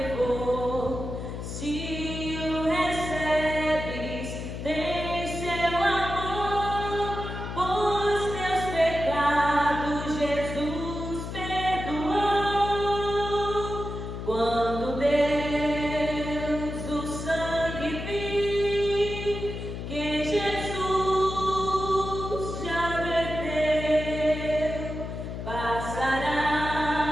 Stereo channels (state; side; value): noise; left; hum, 7 dB below the sound